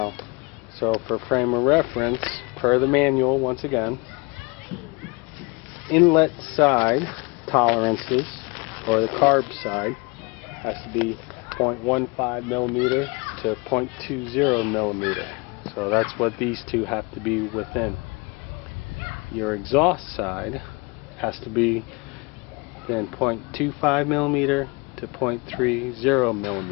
so for frame of reference, per the manual, once again, inlet side tolerances, or the carb side, has to be 0.15mm to 0.20mm. So that's what these two have to be within. Your exhaust side has to be then 0.25mm to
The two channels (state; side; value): quieter; right; 27.9 dB